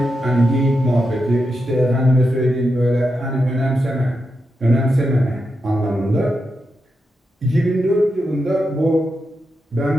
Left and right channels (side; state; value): both; normal; correlation 0.86